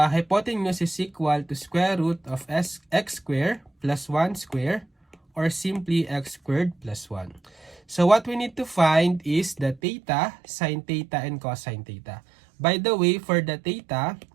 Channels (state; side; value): drops out; left; at 9.8 s